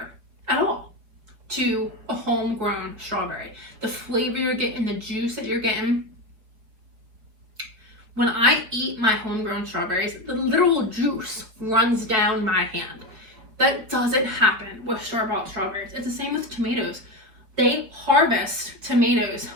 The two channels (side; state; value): left; late; 4.9 ms